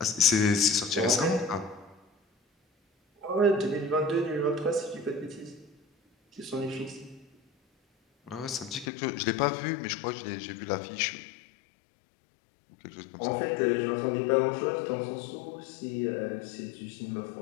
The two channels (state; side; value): drops out; right; at 8.9 s